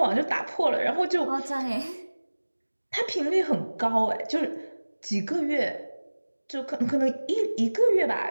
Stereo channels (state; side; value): inverted; both; correlation -1.00